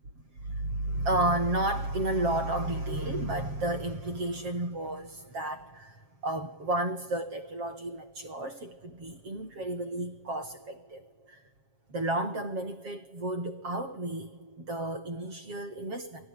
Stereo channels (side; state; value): left; late; 7.4 ms